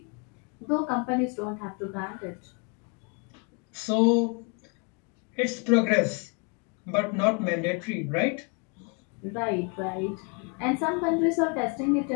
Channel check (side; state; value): right; quieter; 33.7 dB